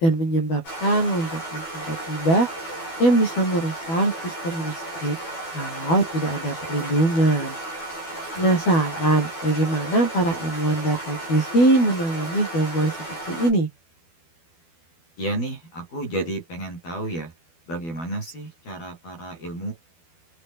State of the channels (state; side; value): late; right; 12 ms